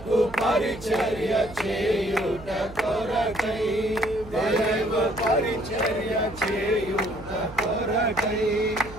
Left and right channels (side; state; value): right; noise; hum, 17 dB below the sound